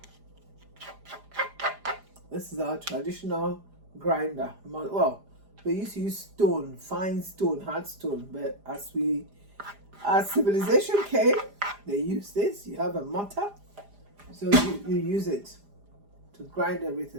This is our traditional grinder. Well, they used to use stone, fine stone, hard stone, but as civilization came, they used this. You have a mortar, so you use it to grind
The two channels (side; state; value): left; late; 4.9 ms